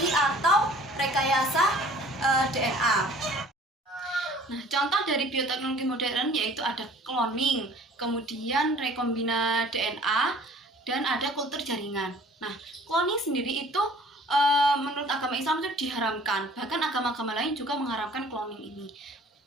atau rekayasa DNA. Nah, contoh dari bioteknologi modern yaitu ada cloning, kemudian rekombina DNA, dan ada kultur jaringan. Nah, cloning sendiri itu menurut agama Islam itu diharamkan. Bahkan agama-agama lain juga mengharamkan cloning ini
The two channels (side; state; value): both; normal; correlation 0.51